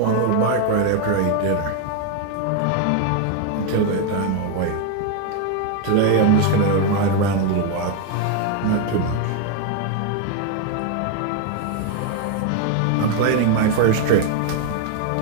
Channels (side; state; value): both; different; correlation 0.01